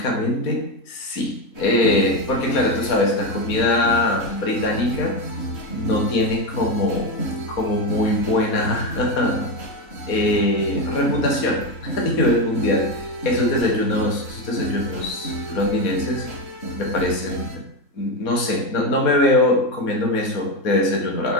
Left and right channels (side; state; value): right; late; 4.2 ms